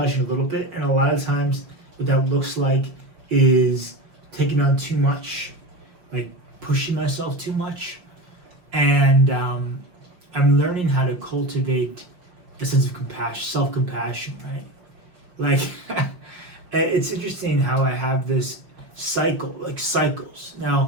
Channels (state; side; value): late; left; 5.6 ms